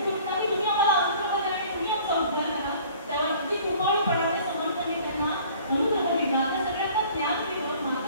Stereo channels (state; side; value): inverted; both; correlation -0.51